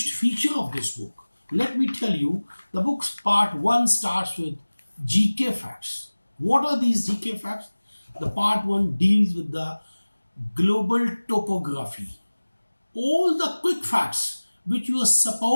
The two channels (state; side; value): inverted; both; correlation -1.00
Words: feature of this book, let me tell you, the book's part 1 starts with GK facts. What are these GK facts? The part 1 deals with the global topography. All the quick facts which you are